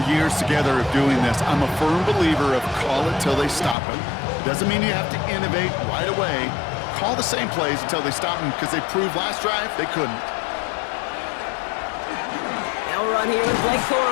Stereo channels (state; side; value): drops out; right; at 3.8 s